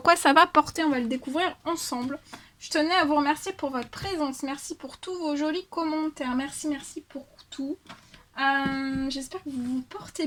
quoi ça va porter, on va le découvrir ensemble. Je tenais à vous remercier pour votre présence, merci pour tous vos jolis commentaires, merci pour tout. J'espère que vous vous portez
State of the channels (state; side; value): identical; both; correlation 1.00